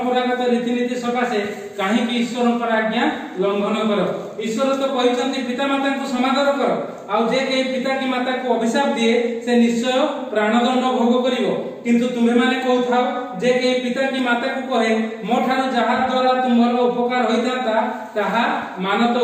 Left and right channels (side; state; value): both; identical; correlation 1.00